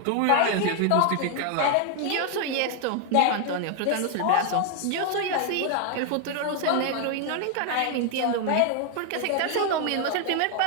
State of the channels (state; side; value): different; both; correlation 0.00